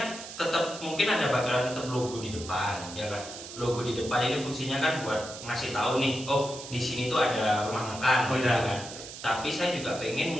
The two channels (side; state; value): right; noise; hiss, 12 dB below the sound